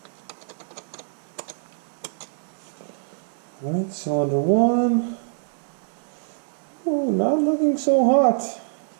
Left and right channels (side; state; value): left; silent; 61 dB below the other